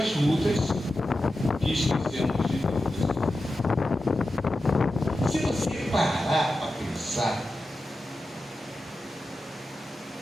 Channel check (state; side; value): normal; both; correlation 0.91